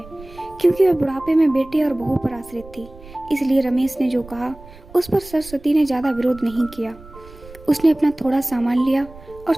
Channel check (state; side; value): noise; right; rumble, 20 dB below the sound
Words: क्योंकि वह बुढ़ापे में बेटे और बहू पर आश्रित थी। इसलिए रमेश ने जो कहा उस पर सरस्वती ने ज्यादा विरोध नहीं किया। उसने अपना थोड़ा सामान लिया और